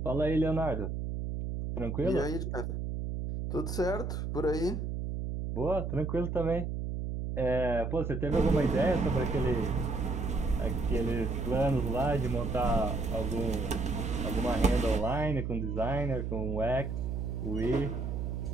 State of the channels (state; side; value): noise; right; hum, 3 dB below the sound